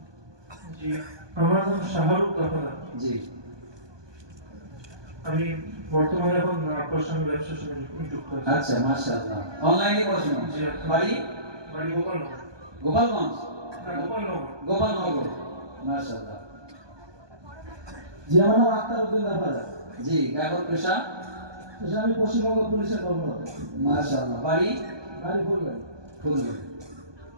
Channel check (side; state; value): left; late; 1.2 ms